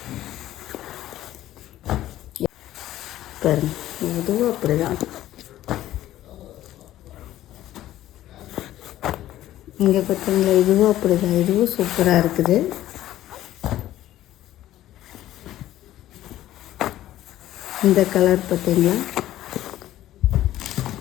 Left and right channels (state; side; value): quieter; right; 13.8 dB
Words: பாருங்க, இதுவும் அப்படிதான். இங்கே பார்த்தீங்களா, இதுவும் அப்படிதான். இதுவும் சூப்பராக இருக்குது. இந்த கலர் பார்த்தீங்களா,